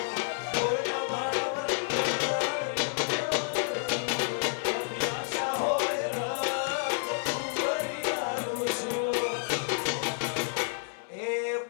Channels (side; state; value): right; silent; 58 dB below the other